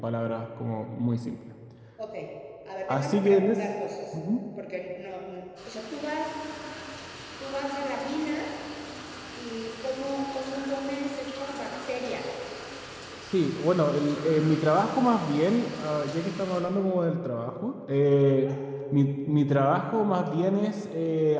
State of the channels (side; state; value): both; identical; correlation 1.00